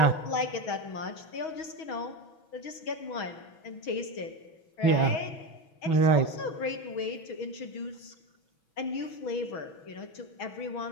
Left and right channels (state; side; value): late; right; 6.3 ms